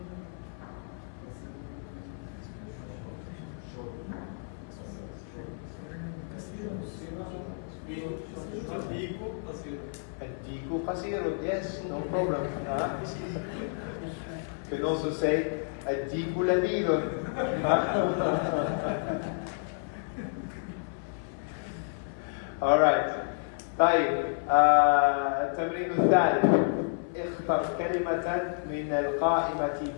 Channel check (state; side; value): silent; right; 56 dB below the other